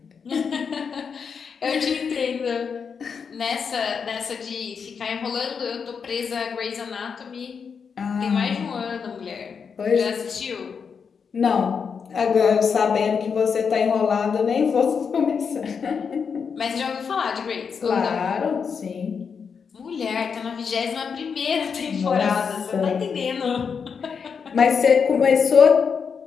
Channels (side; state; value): right; quieter; 6.2 dB